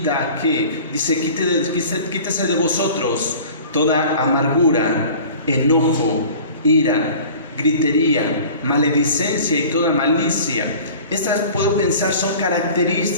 a que, dice: quítese de vosotros toda amargura, enojo, ira, gritería, maledicencia y toda malicia. Estas, puedo pensar, son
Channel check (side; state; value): both; inverted; correlation -0.43